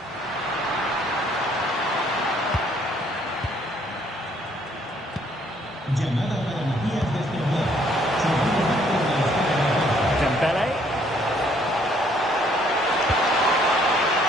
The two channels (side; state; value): both; normal; correlation 0.65